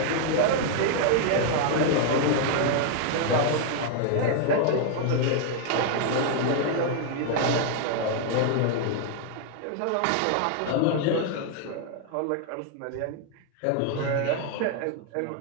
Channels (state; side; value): different; both; correlation 0.00